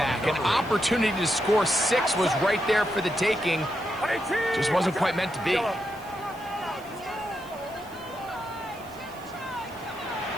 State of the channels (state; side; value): noise; right; hiss, 23 dB below the sound